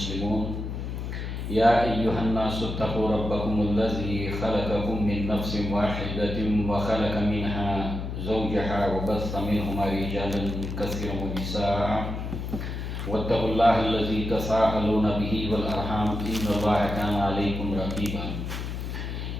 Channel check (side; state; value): left; noise; hum, 5 dB below the sound